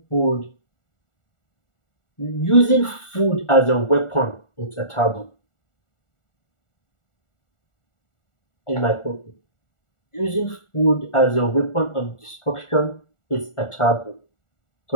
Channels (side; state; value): right; late; 1.4 ms